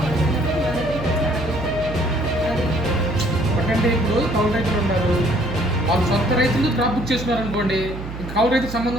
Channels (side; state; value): right; noise; hum, 9 dB below the sound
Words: పడుతున్నప్పుడు మన దగ్గరికి అది ఎందుకంటే ఇప్పుడు కౌలు రైతులు ఉన్నారు, వాళ్ళు సొంత రైతులు క్రాప్ బుక్ చేసుకున్నారు అనుకోండి, కౌలు రైతు